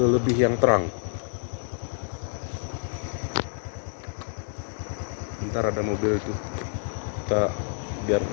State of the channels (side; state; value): right; silent; digital silence